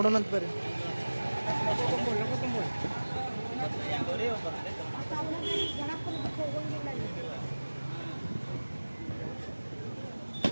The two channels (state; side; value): inverted; both; correlation -1.00